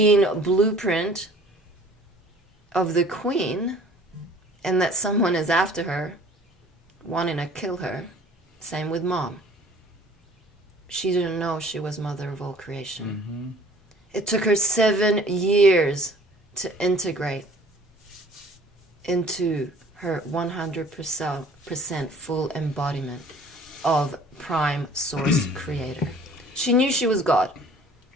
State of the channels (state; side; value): normal; both; correlation 0.51